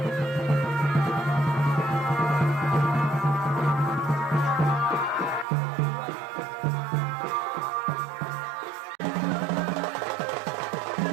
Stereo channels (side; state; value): left; drops out; at 5.5 s